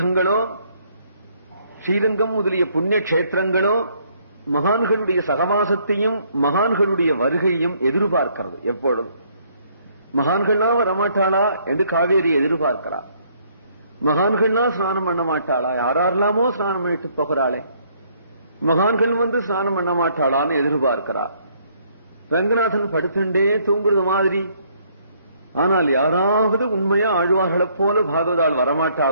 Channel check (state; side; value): inverted; both; correlation -0.66